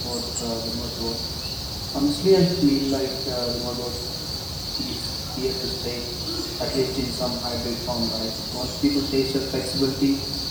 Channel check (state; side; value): noise; right; hiss, 18 dB below the sound